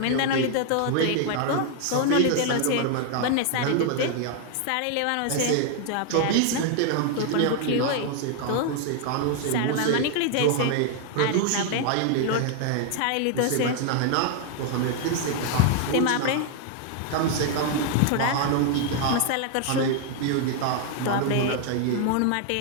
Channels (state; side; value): different; both; correlation 0.00